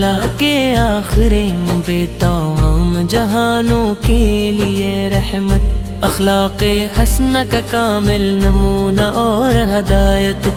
کے آخری پہ تمام جہانوں کے لیے رحمت، اخلاق حسنہ کا کامل نمونہ اور ہدایت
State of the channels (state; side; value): identical; both; correlation 1.00